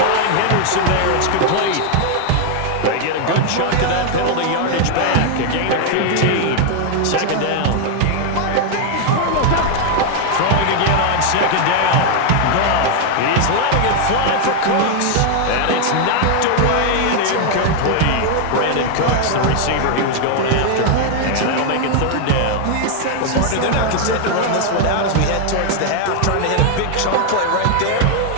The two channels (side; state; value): both; different; correlation 0.00